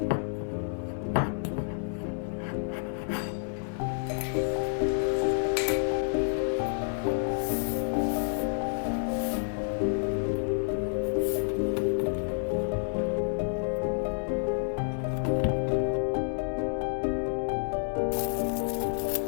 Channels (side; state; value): right; silent; digital silence